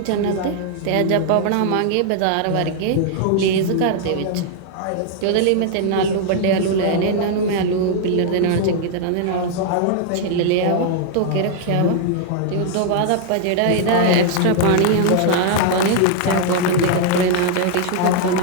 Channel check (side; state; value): both; different; correlation 0.00